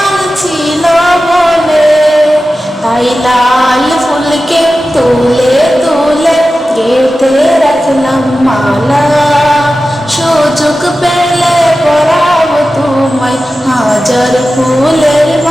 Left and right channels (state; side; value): normal; both; correlation 0.94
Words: ছিল বলে, তাই লাল ফুলকে তুলে তুলে গেঁথে রাখলাম মালা, সুযোগ পেলে পরাব তোমায় হাজার ফুলের